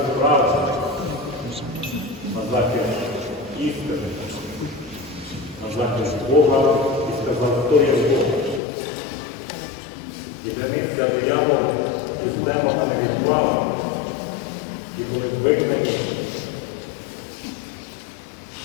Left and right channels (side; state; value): right; drops out; at 8.6 s